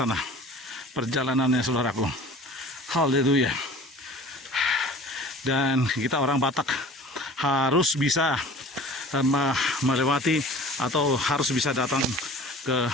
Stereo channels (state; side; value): normal; both; correlation 0.43